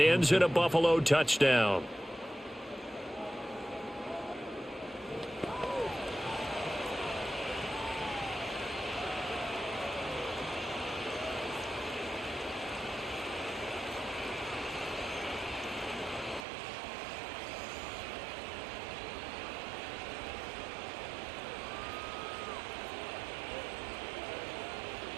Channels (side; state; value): left; drops out; at 16.4 s